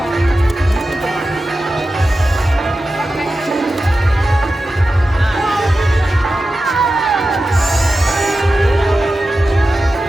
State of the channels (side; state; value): both; normal; correlation 0.93